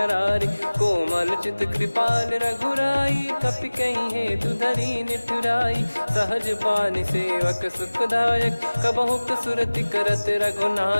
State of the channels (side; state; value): both; inverted; correlation -1.00